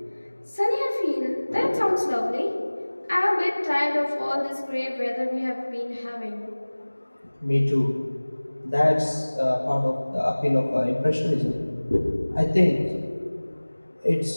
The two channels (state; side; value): inverted; both; correlation -1.00